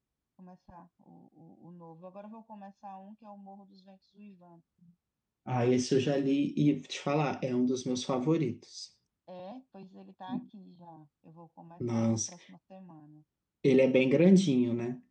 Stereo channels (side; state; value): both; identical; correlation 1.00